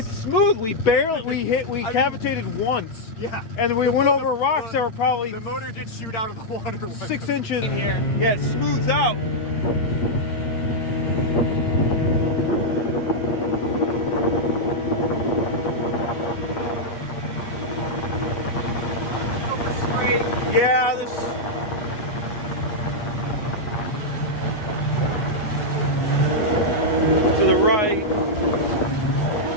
smooth. We cavitated once. Yeah. And we went over rocks that were probably... The motor did shoot out of the water. 6 inches in here. Yeah, it smooths out. Yeah, to the right.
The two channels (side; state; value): right; late; 8.3 ms